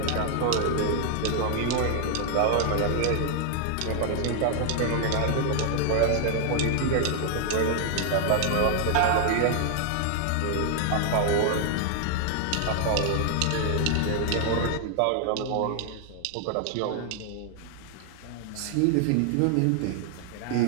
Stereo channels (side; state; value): both; different; correlation 0.00